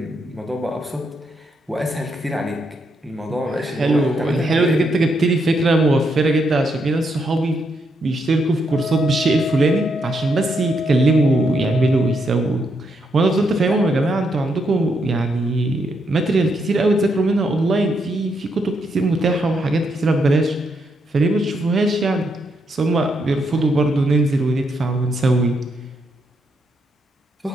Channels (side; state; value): both; normal; correlation 0.78